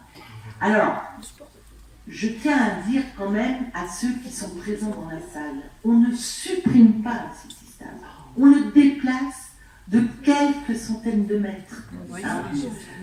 Alors, je tiens à dire quand même à ceux qui sont présents dans la salle, on ne supprime pas un City-Stade, on le déplace de quelques centaines de mètres. Hein.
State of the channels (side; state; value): both; identical; correlation 1.00